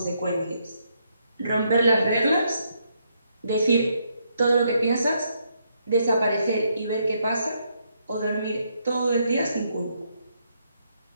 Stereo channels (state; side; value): inverted; both; correlation -0.76